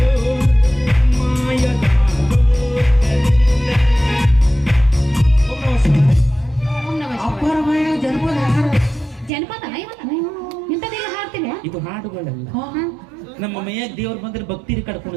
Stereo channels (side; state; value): left; drops out; at 9.3 s